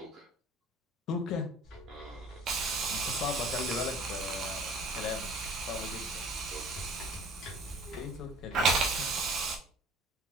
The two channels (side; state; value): both; normal; correlation 0.47